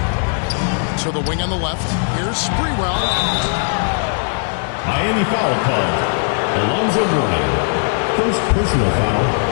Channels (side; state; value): right; silent; 66 dB below the other